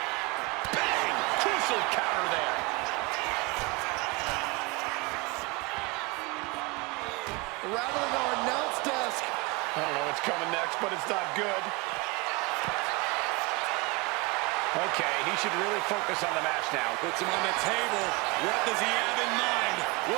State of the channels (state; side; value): quieter; left; 25.6 dB